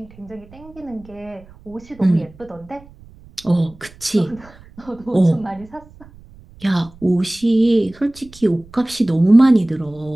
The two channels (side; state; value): right; noise; rumble, 23 dB below the sound